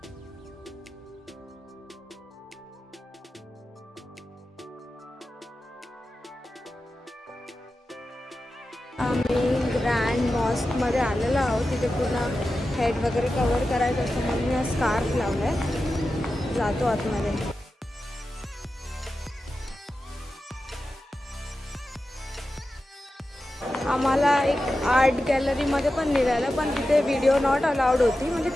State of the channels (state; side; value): normal; both; correlation 0.92